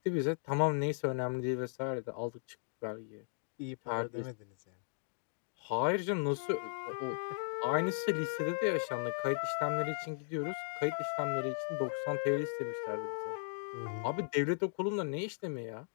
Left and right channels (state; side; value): silent; right; digital silence